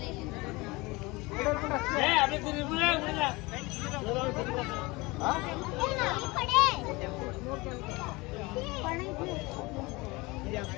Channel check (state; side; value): quieter; right; 23.6 dB